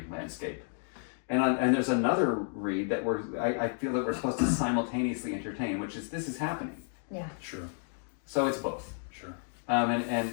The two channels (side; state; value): right; silent; 57 dB below the other